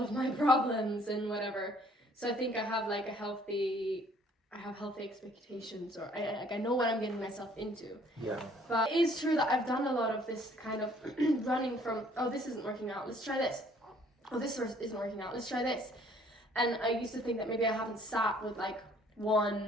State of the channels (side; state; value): both; normal; correlation 0.60